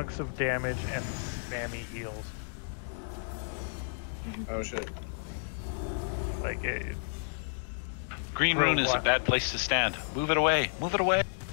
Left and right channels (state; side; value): silent; right; digital silence